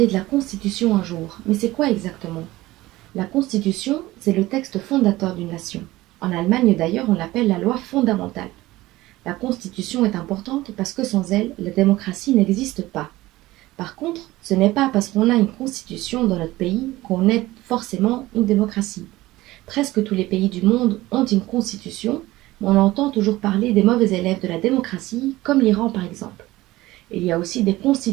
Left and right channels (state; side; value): quieter; left; 17.9 dB